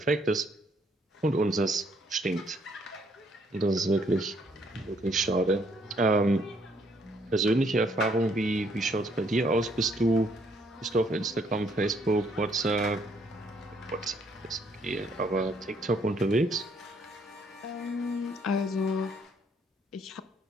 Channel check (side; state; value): both; normal; correlation 0.67